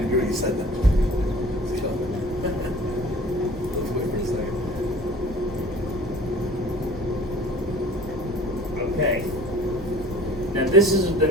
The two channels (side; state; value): both; normal; correlation 0.46